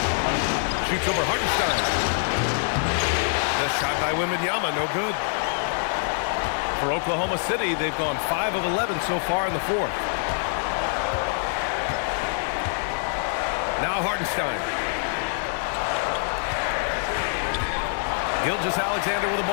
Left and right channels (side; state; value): right; silent; 62 dB below the other